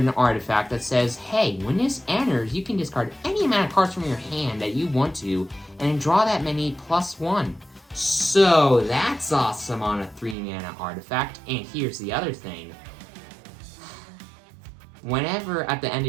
artifact that says, hey, when this enters, you can discard any amount of cards from your hand that you want to, and then draw that many +1. So, that's awesome on a 3-mana artifact, and here's the other thing. Whenever, at the end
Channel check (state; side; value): drops out; left; at 10.4 s